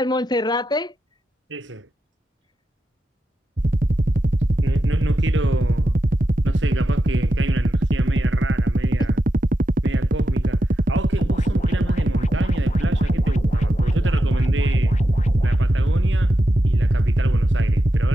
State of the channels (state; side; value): normal; both; correlation 0.88